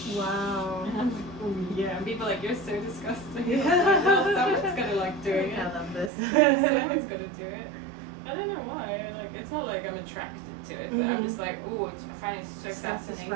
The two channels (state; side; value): drops out; left; at 6.1 s